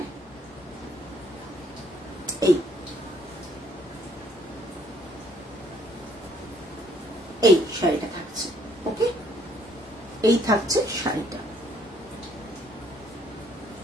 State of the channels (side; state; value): both; normal; correlation 0.65